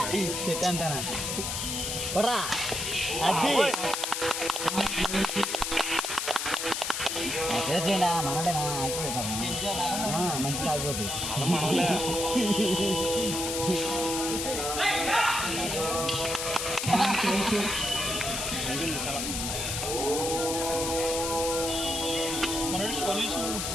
చెట్టు అంతా పడరా అది చేయండి మనడేనా మంచి తాగిపోతుంది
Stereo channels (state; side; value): noise; left; hiss, 2 dB below the sound